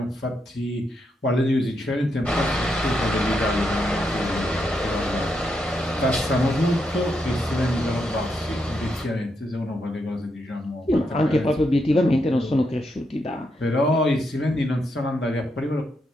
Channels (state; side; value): normal; both; correlation 0.81